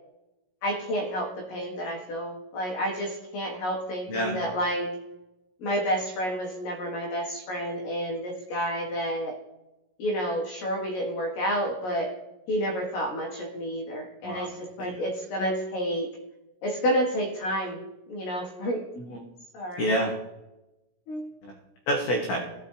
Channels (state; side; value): late; right; 16 ms